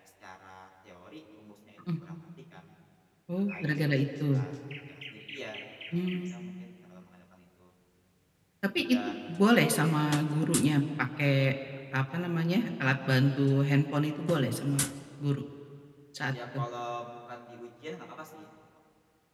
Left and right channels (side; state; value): both; identical; correlation 1.00